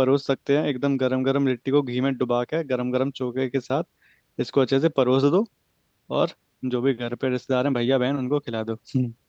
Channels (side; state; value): both; identical; correlation 1.00